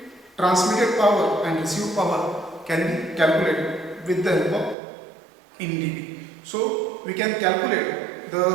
transmitted power and received power can be calculated with the help of in dB. So we can calculate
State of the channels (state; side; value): drops out; left; at 4.8 s